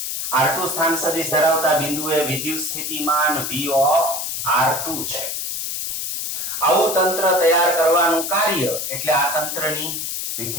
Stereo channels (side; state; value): left; noise; hiss, 3 dB below the sound